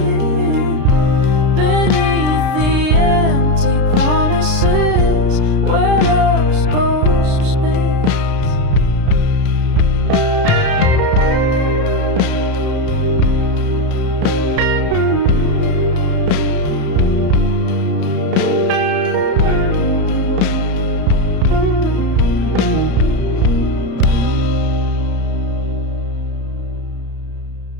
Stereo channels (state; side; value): late; left; 33 ms